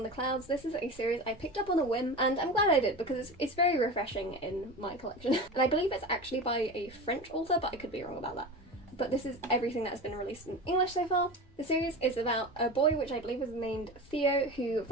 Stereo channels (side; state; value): both; normal; correlation 0.29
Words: the Clouds. This is a series I picked up on a whim, and I'm glad I did because it's very refreshing in my collection. And I believe it's actually by a French author, but I could be wrong about that. But this is everything that's been released in English so far. The series is about a boy, which I believe is named Theo, who